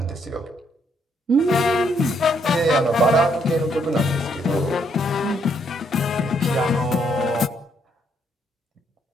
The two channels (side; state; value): both; normal; correlation 0.72